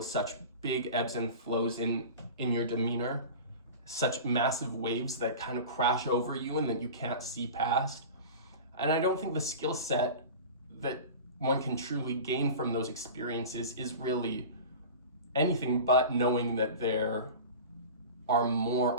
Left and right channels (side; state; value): both; inverted; correlation -0.34